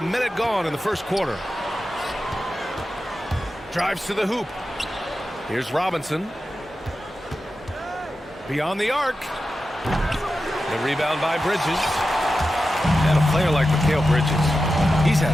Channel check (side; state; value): both; normal; correlation 0.92